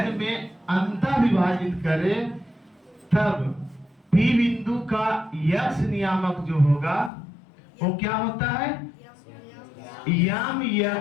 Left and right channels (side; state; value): right; drops out; at 7.1 s